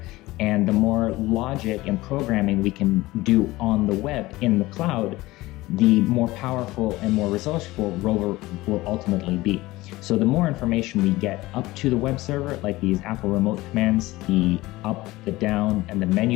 and the more logic and programming we can do on the web in the cloud, the more powerful and more resourceful ROVer will ultimately be. So the more information we get up to the web server, like these Apple remote commands, the up, the down, and the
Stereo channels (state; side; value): quieter; right; 19.0 dB